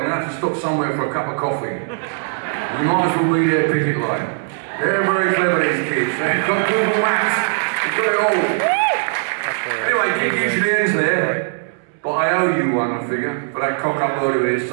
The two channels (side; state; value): left; silent; 66 dB below the other